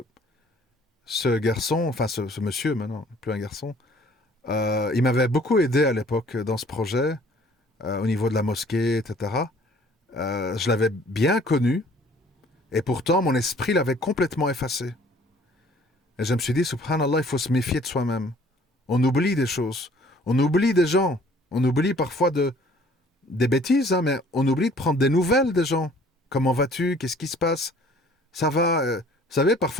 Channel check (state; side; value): normal; both; correlation 0.55